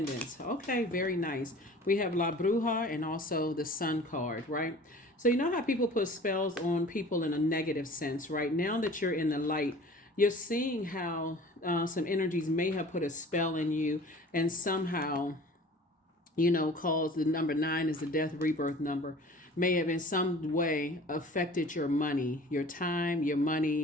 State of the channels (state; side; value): normal; both; correlation 0.45